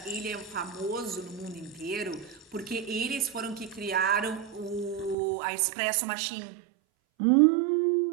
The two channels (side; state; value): left; drops out; at 5.2 s